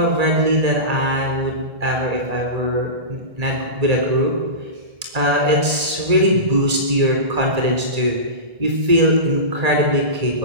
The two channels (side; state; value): left; late; 1.8 ms